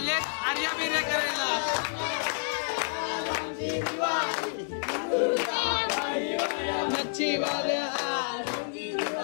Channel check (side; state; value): right; silent; digital silence